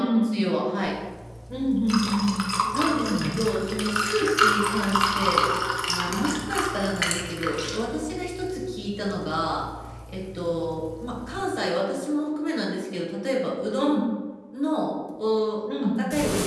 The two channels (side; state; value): both; identical; correlation 1.00